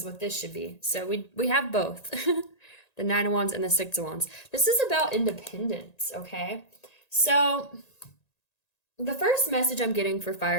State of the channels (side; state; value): right; late; 1.9 ms